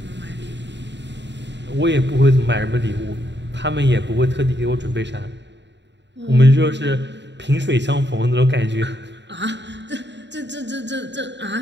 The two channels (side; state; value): left; late; 0.52 ms